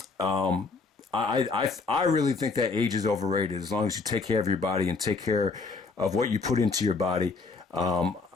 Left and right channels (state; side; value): quieter; right; 4.2 dB